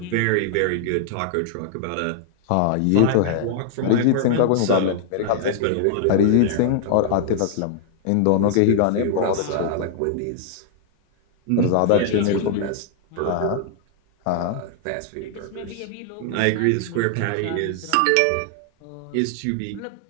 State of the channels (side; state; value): both; different; correlation -0.01